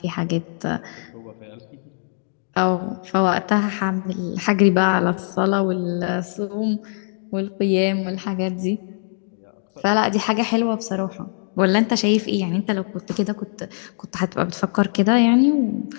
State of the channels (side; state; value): right; silent; digital silence